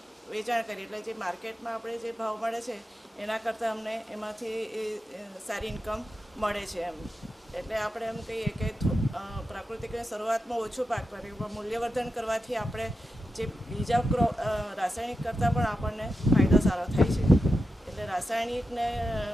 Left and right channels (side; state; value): both; normal; correlation 0.89